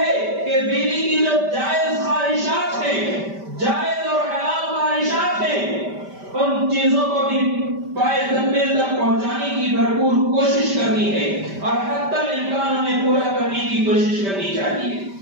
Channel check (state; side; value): late; left; 5.1 ms